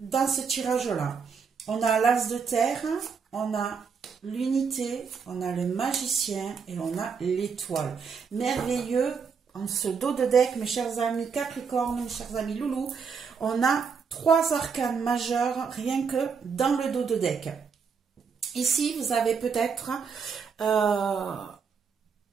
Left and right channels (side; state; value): left; quieter; 5.9 dB